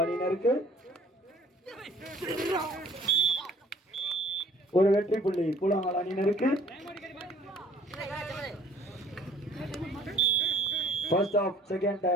அணியினருக்கு, ஒரு வெற்றி புள்ளி பூலாங்கல் அணியினருக்கு. First half second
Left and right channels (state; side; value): normal; both; correlation 0.54